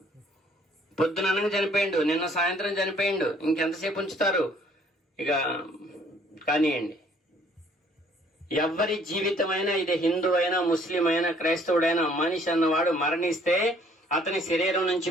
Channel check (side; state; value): both; normal; correlation 0.60